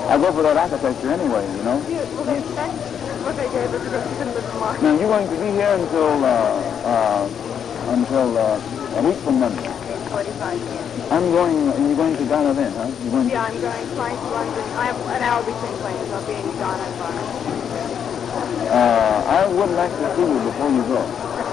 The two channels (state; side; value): quieter; right; 8.1 dB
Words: I go for that architecture anyway, you know? Yeah, well, that's what they gave us because she couldn't live in March. Now, you're going to be here until a week from Monday. 45 years. You're going to Ghana then, huh? Yeah, I'm going flying to London. I have an hour between planes. I'll be in Ghana and Ghana. I would like to see you before you go.